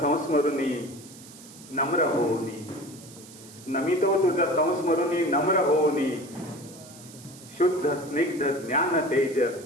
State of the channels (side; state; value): right; noise; hiss, 19 dB below the sound